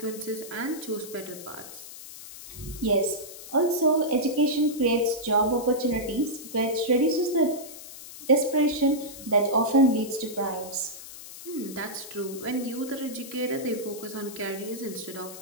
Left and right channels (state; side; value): noise; left; hiss, 14 dB below the sound